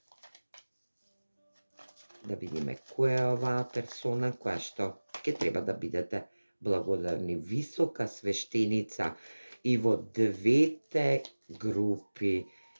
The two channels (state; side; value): inverted; both; correlation -1.00